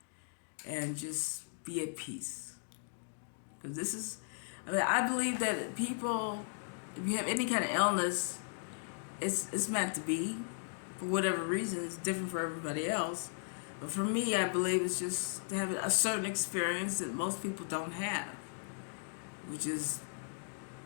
and just be at peace. Because I believe that people, if you have any kind of illness, it's meant to be. For whatever reason, it's different for everybody else. But for me, I believe it's just to have a certain experience that most people don't have, which is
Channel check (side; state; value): right; silent; digital silence